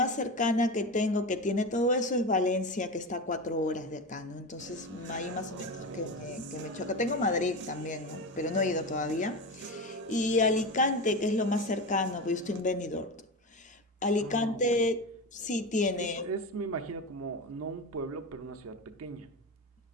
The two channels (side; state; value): both; normal; correlation 0.22